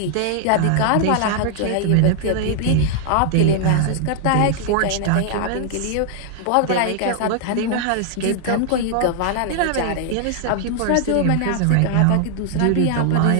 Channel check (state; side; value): different; both; correlation 0.00